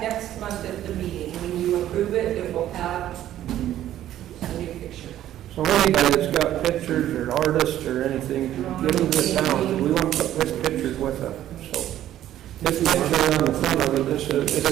month at the meeting. When you approve it, it will have a new picture. So anybody that's got pictures or artists or anything, get them to the town. We want to put pictures with it, so. This picture on the front of it, this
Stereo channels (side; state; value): left; quieter; 12.4 dB